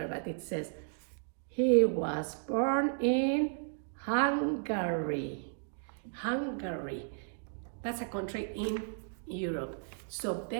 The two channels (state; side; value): silent; left; digital silence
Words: but it says he was born in Hungary. Hungary. That's a country in Europe. So